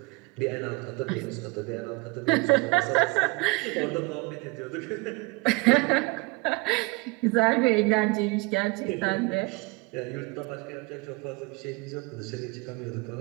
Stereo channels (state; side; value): quieter; left; 25.3 dB